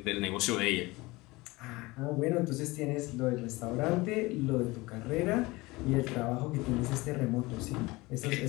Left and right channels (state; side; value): quieter; right; 22.0 dB